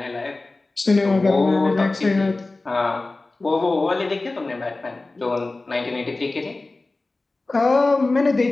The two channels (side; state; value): right; quieter; 3.2 dB